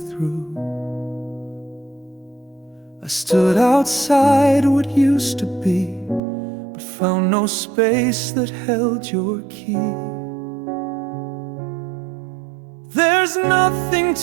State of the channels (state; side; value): drops out; left; at 6.2 s